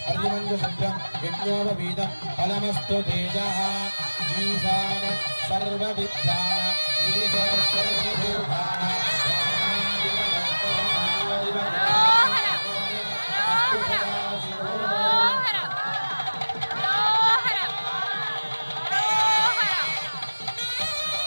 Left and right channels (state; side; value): inverted; both; correlation -1.00